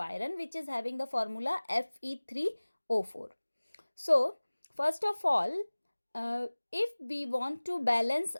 which is having the formula Fe3O4. So first of all, if we want to balance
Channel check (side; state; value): both; inverted; correlation -1.00